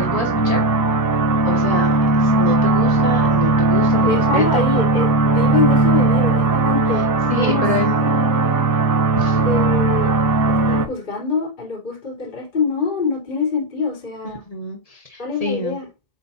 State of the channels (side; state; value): right; late; 1.7 ms